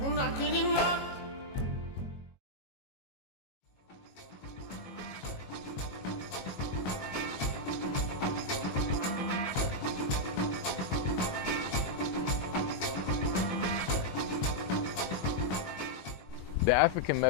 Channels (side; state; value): right; late; 22 ms